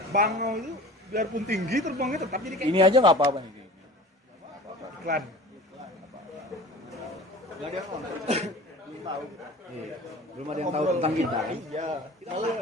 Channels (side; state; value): both; normal; correlation 0.40